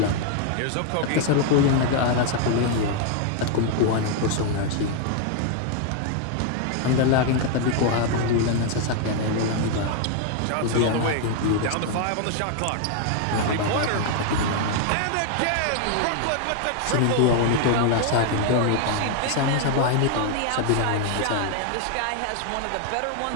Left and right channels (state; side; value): different; both; correlation 0.00